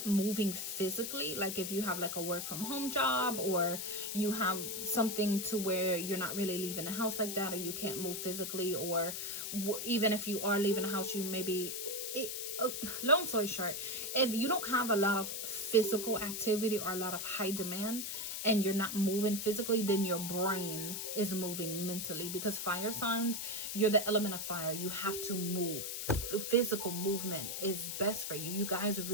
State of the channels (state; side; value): noise; left; hiss, 4 dB below the sound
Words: moving physically, like if you have like a work from home job, or you have something to where you're not really leaving the house like that, or you can't move physically, or even if you are leaving the house, you maybe long story short, if you don't have a lot of physical activity or a lot of high demand, and you're not moving physically, then your brain is moving mentally, because fire signs, you're the element of fire. You have to move. Physical movement is best for you. You guys